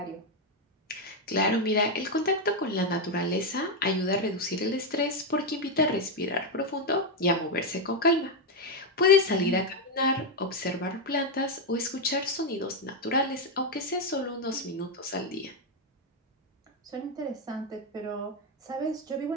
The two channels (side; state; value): both; normal; correlation 0.05